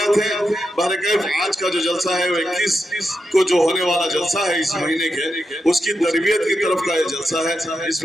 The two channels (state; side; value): normal; both; correlation 0.86